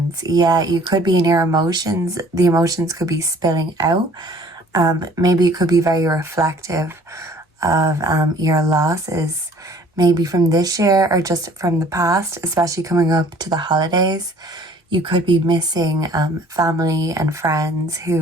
Yeah, you could be in your emotions. The emotions could be spilling out. Maybe it could be very reflective of your losses, maybe from this year or just from the past, especially coming up to the holidays. You could be missing family and friends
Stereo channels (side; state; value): both; normal; correlation 0.54